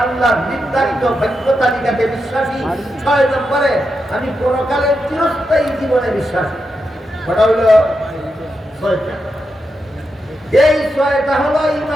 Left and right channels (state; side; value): normal; both; correlation 0.86